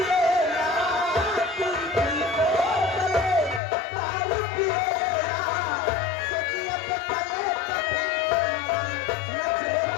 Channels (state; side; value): drops out; right; at 3.6 s